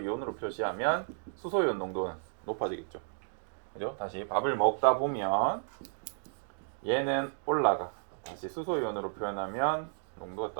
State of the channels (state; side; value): silent; left; digital silence